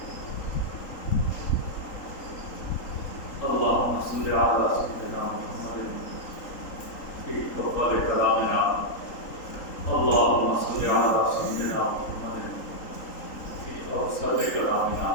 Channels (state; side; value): late; right; 3.8 ms